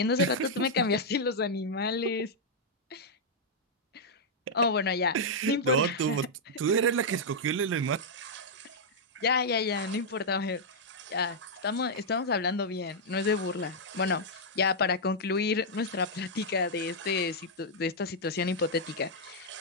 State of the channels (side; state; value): both; normal; correlation -0.06